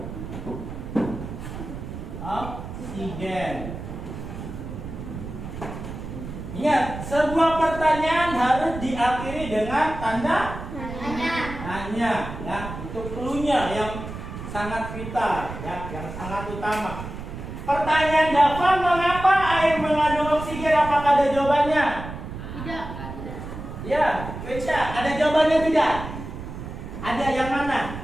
oksigen? Ingat, sebuah pertanyaan harus diakhiri dengan tanda tanya. Ya, itu cluenya yang sangat vital, ya, yang sangat utama. Pertanyaan Dava, mengapa air mengandung oksigen? Apakah ada jawabannya? Tidak. Ya, Keisha, ada jawabannya tidak? Ada yang mana?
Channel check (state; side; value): noise; right; rumble, 9 dB below the sound